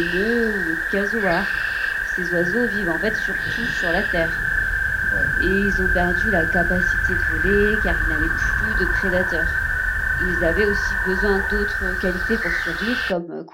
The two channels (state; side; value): identical; both; correlation 1.00